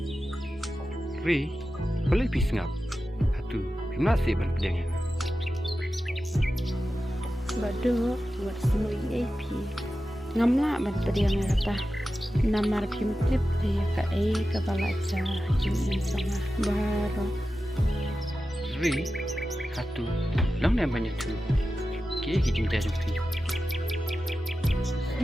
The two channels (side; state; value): both; normal; correlation 0.93